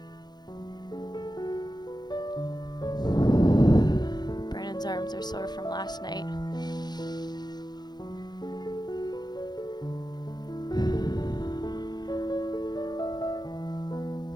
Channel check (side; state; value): right; late; 0.20 ms